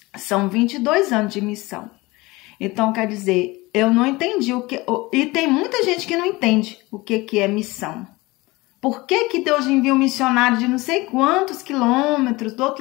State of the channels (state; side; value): quieter; right; 21.9 dB